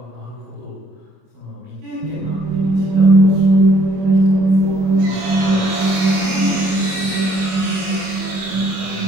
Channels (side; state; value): left; late; 23 ms